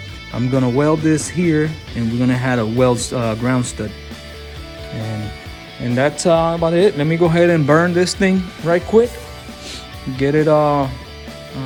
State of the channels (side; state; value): both; identical; correlation 1.00